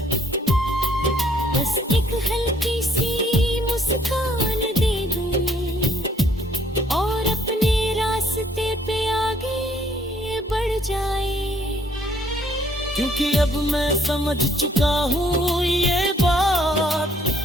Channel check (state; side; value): normal; both; correlation 0.64